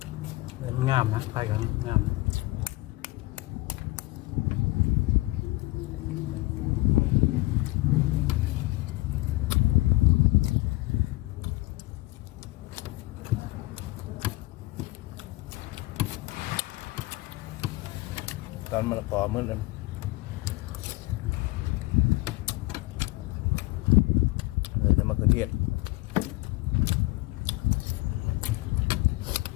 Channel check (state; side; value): quieter; right; 21.4 dB